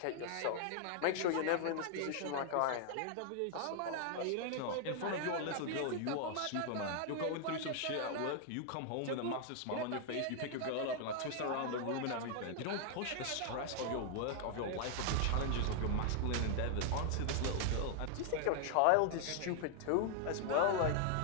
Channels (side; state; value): both; different; correlation 0.00